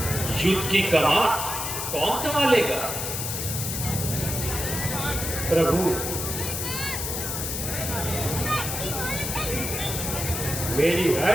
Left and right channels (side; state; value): left; noise; hiss, 3 dB below the sound